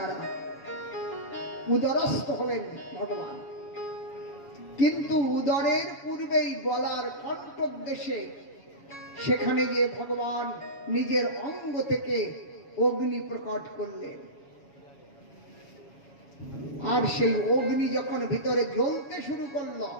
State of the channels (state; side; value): late; right; 7.2 ms